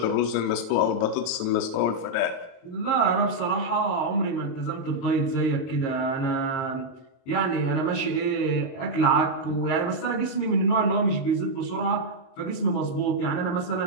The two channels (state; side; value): late; right; 23 ms